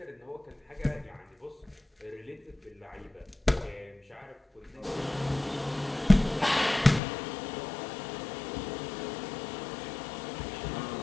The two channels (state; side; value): drops out; right; at 7.0 s